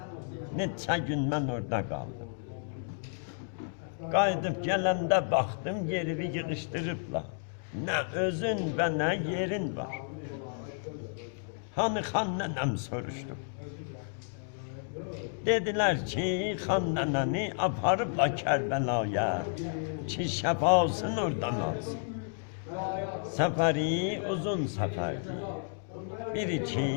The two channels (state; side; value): silent; right; digital silence